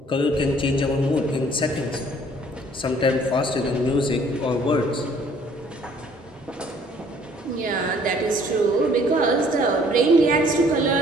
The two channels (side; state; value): both; normal; correlation 0.58